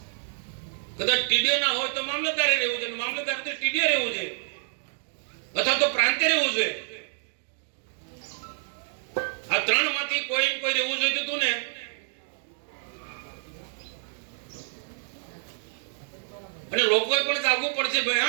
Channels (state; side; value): silent; left; digital silence